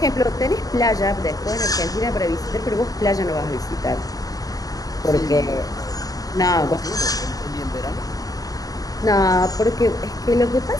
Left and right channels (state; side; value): late; right; 0.18 ms